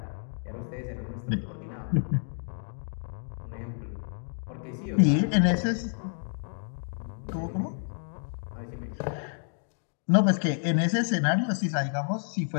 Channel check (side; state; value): right; silent; digital silence